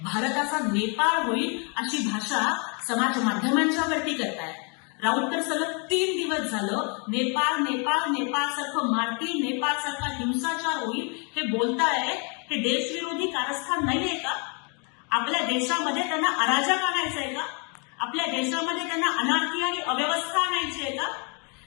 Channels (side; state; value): right; quieter; 35.6 dB